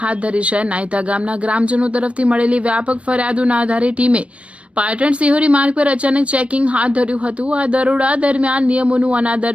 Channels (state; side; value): late; left; 0.062 ms